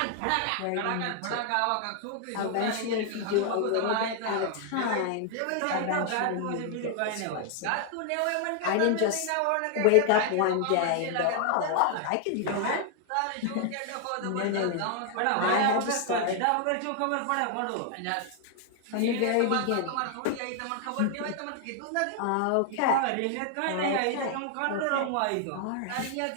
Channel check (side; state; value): both; different; correlation 0.00